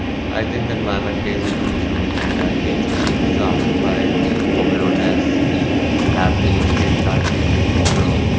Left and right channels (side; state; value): both; identical; correlation 1.00